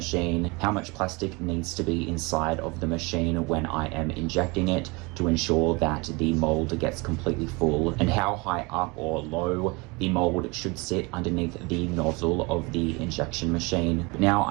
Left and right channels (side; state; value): left; quieter; 26.8 dB